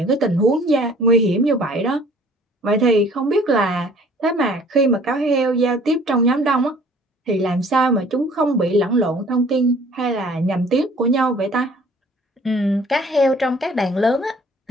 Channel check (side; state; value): both; normal; correlation 0.53